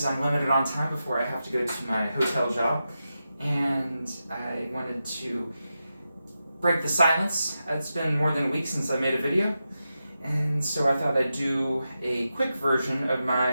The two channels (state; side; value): inverted; both; correlation -0.90